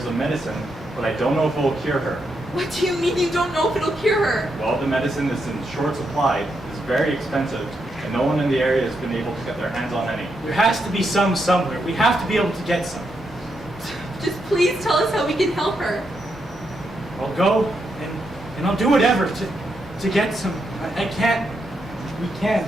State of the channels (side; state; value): both; normal; correlation 0.82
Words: a medicine, but I don't know if it will cure her. What do you mean you don't know if it'll cure her? Well, the medicine is in short supply, is very expensive, and no one in the area has been able to get their hands on any. There has to be some somewhere. We have to be able to get some. Just please tell us how we can help her. I'll go and I'll do whatever to get some. I can't. We can't.